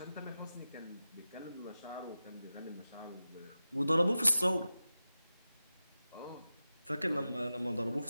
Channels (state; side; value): inverted; both; correlation -0.94